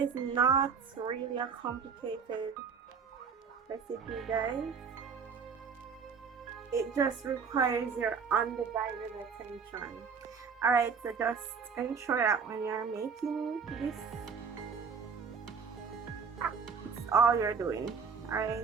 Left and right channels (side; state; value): left; quieter; 5.9 dB